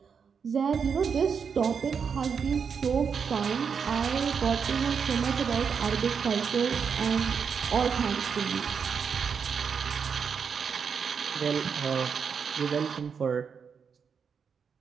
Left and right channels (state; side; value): quieter; left; 6.4 dB